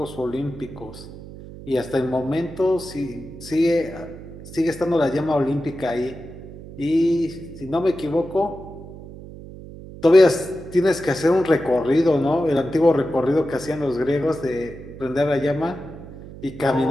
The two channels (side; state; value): right; noise; hum, 15 dB below the sound